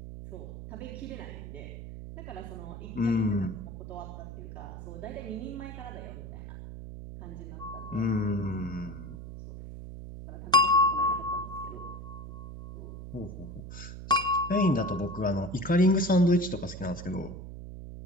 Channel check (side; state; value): right; noise; hum, 10 dB below the sound